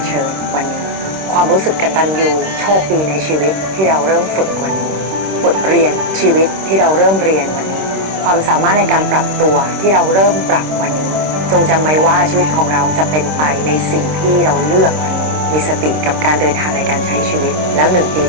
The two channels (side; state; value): left; late; 26 ms